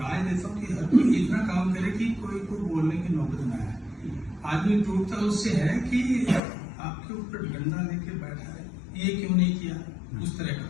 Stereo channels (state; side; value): drops out; right; at 6.4 s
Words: देता हूँ कि हर कोई इतना काम करे कि कोई को बोलने की नौबत ना आए। आदमी टूटता उससे है कि आपके ऊपर डंडा लेके बैठा है, ये क्यों नहीं किया, उस तरह का।